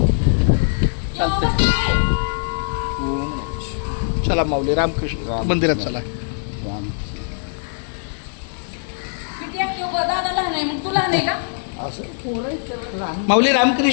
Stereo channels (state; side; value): silent; right; 65 dB below the other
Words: चला माऊली रामकृष्ण मंदिरात चला. माऊली